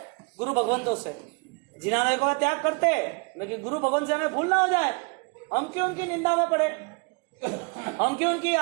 गुरु भगवंतों से। जिनालय को त्याग करते, लेकिन गुरु भगवंत से हमें भूल ना हो जाए। हम क्यों उनकी निंदा में पड़े, हम क्यों उनकी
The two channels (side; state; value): left; quieter; 32.0 dB